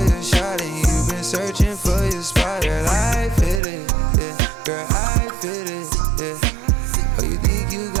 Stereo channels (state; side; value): drops out; left; at 3.6 s